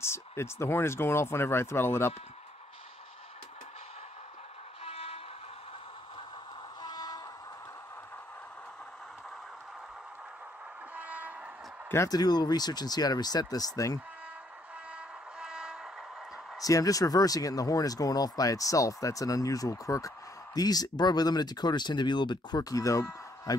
It's the horn is going off whenever I throttle it up. Gonna have to do a little research and see how to reset this thing. See, I'm just reversing it and the horn is going off by itself. That's an unusual quirk. These Broadway Limited decoders tend to be a little bit quirky, though. I've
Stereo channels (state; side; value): normal; both; correlation 0.70